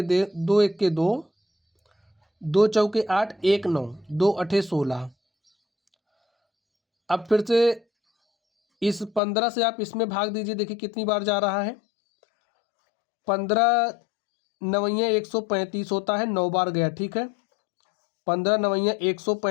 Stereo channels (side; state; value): right; drops out; at 9.2 s